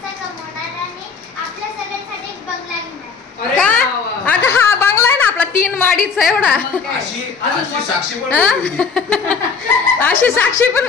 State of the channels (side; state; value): right; quieter; 5.4 dB